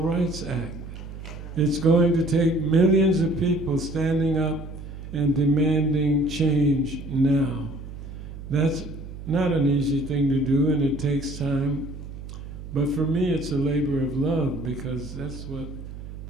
Rights Act. It's going to take millions of people standing up and demanding change now. That's not an easy thing to do, and it takes time. But for me, it's a labor of love, because that's what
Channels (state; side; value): noise; right; hum, 11 dB below the sound